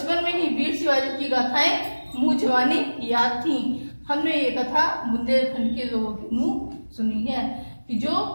में ही वीर शिवाजी की गाथाएं मुंह जवानी याद थी। हमने ये कथा बुंदेलखंड के लोगों के मुंह सुनी है कि जो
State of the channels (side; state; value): both; inverted; correlation -1.00